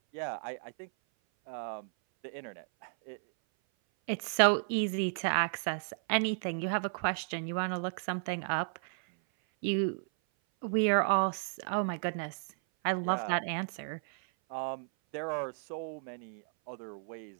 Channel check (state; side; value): silent; left; 55 dB below the other